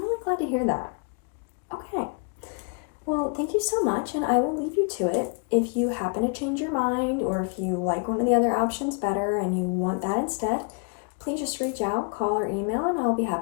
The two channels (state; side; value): quieter; right; 38.9 dB